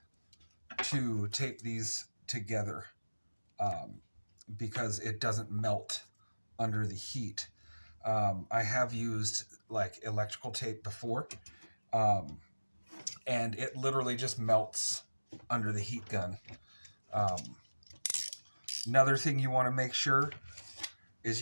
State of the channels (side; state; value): both; inverted; correlation -1.00